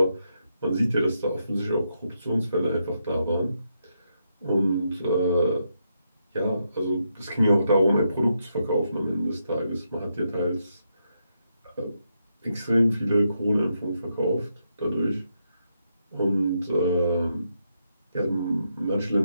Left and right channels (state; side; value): inverted; both; correlation -0.81